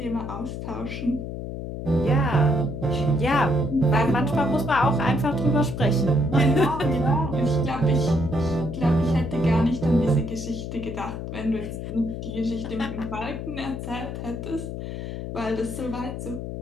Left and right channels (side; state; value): left; noise; hum, 6 dB below the sound